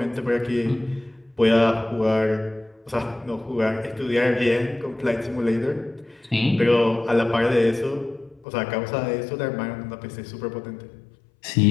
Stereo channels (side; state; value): right; drops out; at 8.5 s